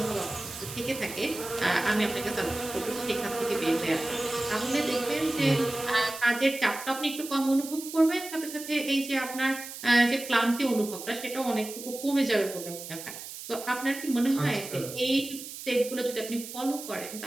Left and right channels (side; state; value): right; noise; hiss, 11 dB below the sound